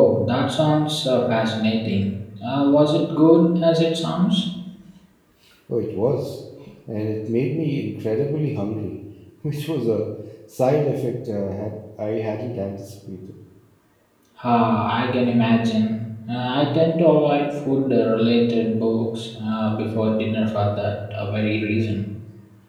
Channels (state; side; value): identical; both; correlation 1.00